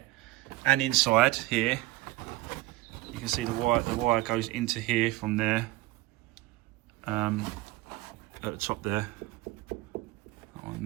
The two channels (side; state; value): left; quieter; 19.2 dB